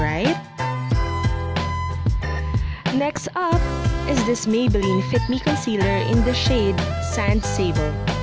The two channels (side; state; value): both; identical; correlation 1.00